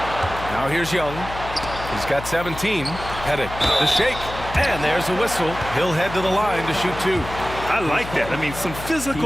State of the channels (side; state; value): left; noise; hum, 11 dB below the sound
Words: Now here's Young. He's got 17. Pettit, the shake. And there's a whistle. He'll head to the line to shoot 2. I like that. I mean, some